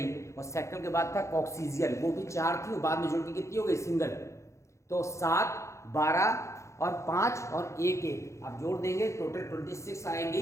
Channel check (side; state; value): right; late; 0.14 ms